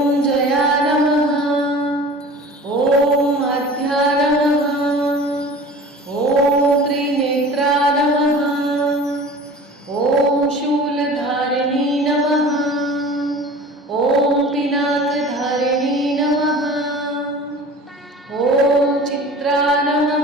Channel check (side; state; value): both; normal; correlation 0.41